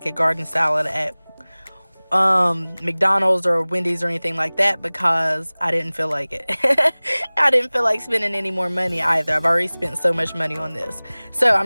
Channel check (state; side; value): inverted; both; correlation -1.00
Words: a garden salad at McDonald's or Wendy's or anything like that because I didn't feel like it. I didn't feel like spending any more money either. I've already spent so much money on this. So